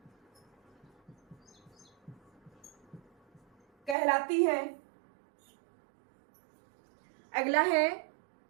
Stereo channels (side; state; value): left; drops out; at 4.0 s